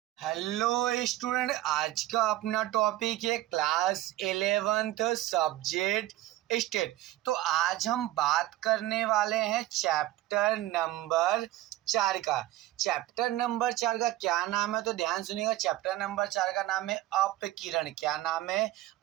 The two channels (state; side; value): quieter; left; 15.8 dB